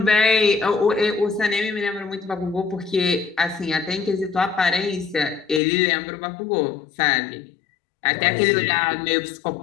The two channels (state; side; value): drops out; right; at 5.6 s